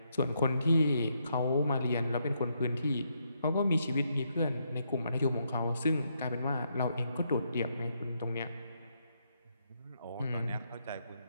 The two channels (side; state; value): both; inverted; correlation -0.77